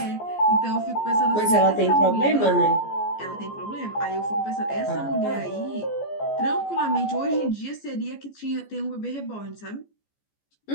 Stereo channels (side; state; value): right; late; 14 ms